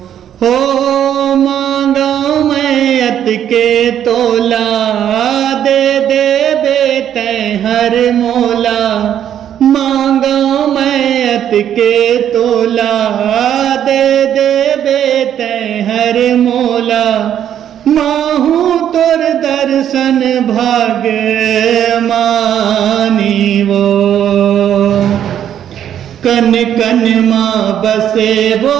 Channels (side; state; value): left; quieter; 10.1 dB